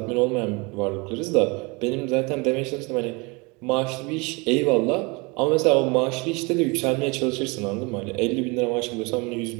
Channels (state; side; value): quieter; left; 27.8 dB